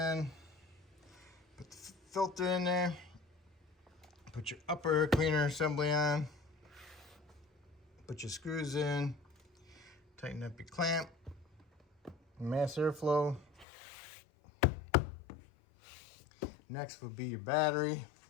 put the filter in there, put your upper air cleaner assembly on, put your screws in, tighten up your clamp, mass airflow. Next will be your battery.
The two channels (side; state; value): right; drops out; at 13.7 s